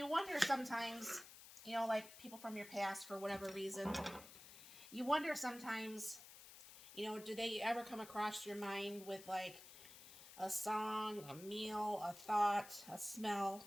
wonder sometimes, like people from your past for whatever reason, you wonder sometimes, do they ever come across your mind with like a song, a meal, a thought, a smell,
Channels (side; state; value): left; noise; hiss, 16 dB below the sound